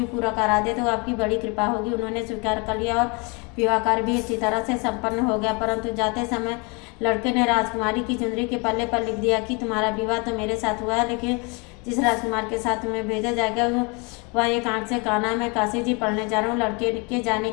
पूरा करा दे तो आपकी बड़ी कृपा होगी। उन्होंने स्वीकार कर लिया और विवाह कार्य भी इसी तरह से संपन्न हो गया। परंतु जाते समय लड़के ने राजकुमारी की चुनरी के पल्ले पर लिख दिया कि तुम्हारा विवाह तो मेरे साथ हुआ है, लेकिन जिस राजकुमार के साथ तुम्हें भेजा जाएगा वह एक आंख से काना। मैं काशी जी पढ़ने जा रहा हूँ। लड़के के जाने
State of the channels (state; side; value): quieter; right; 30.7 dB